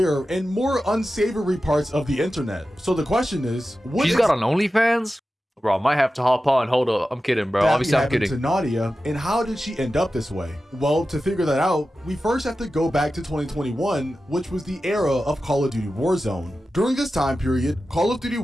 in more unsavory parts of the internet. So the question is, She's got an OnlyFans? Bro, I might have to hop on. Hold up. I'm kidding, bro. Obviously, I'm kidding. To Nadia, and how did she end up this way? Well, to figure that out, we first have to go back to 2021, which was the era of Call of Duty Warzone. During this time period, Call of Duty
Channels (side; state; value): both; normal; correlation 0.93